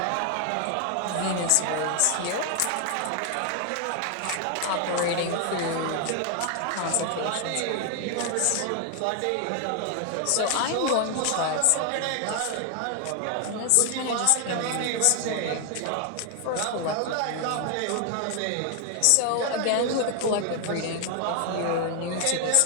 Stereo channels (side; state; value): both; different; correlation 0.00